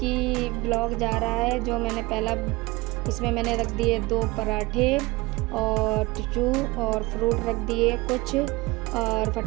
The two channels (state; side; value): quieter; left; 22.2 dB